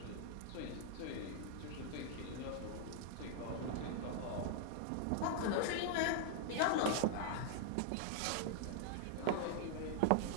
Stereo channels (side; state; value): both; different; correlation -0.01